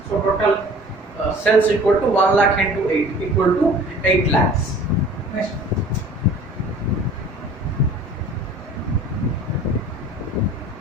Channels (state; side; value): normal; both; correlation 0.47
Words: So total sales equal to 1 lakh into 8 equal to 8 lakhs. Next.